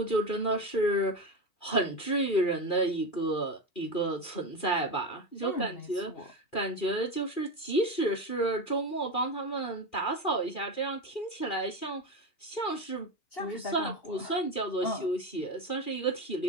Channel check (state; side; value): late; right; 2.4 ms